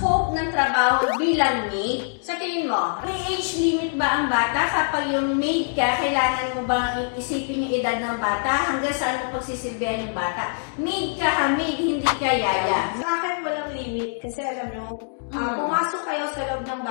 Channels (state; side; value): silent; right; digital silence